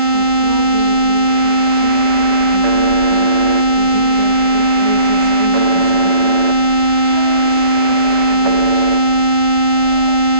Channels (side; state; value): right; late; 5.3 ms